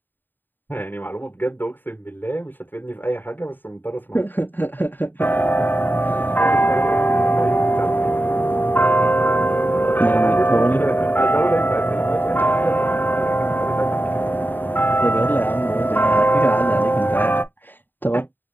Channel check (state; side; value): late; right; 0.092 ms